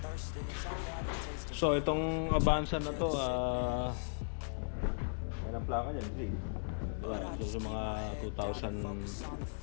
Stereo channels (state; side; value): silent; right; 53 dB below the other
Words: so itong Avanza na to yan ang plaka niyan, diba? So sa mga